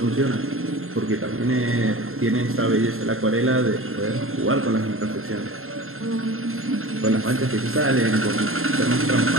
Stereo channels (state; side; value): late; left; 0.61 ms